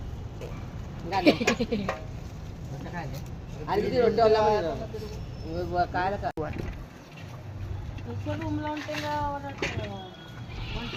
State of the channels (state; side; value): identical; both; correlation 1.00